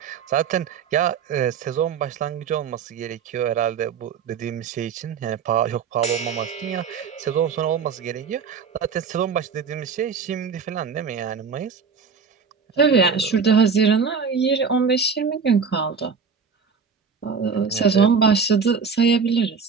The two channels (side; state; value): left; quieter; 5.9 dB